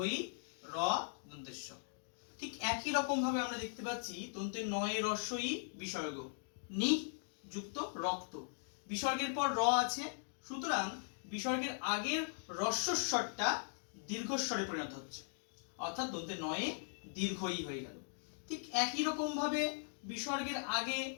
ই র দন্তেশ্ব। ঠিক একই রকম ভাবে আমরা দেখতে পাচ্ছি দন্তের নয়ে রস্বই বিসর্গ নি যুক্ত রক্ত, বিসর্গের পর র আছে, সুতরাং বিসর্গের আগের হ্রস্বস্বরটা দীর্ঘস্বরে পরিণত হচ্ছে, অর্থাৎ দন্তের নয়ে দীর্ঘ ই হয়ে গেল। ঠিক একই রকম ভাবে বিসর্গের আগে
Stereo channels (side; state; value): right; silent; digital silence